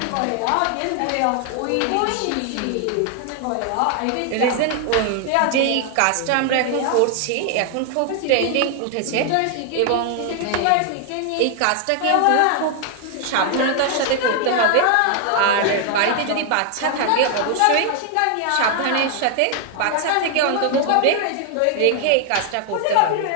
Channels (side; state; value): both; different; correlation 0.00